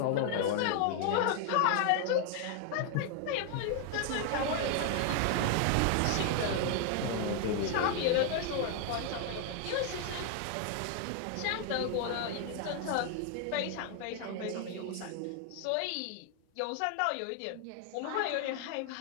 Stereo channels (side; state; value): both; different; correlation 0.00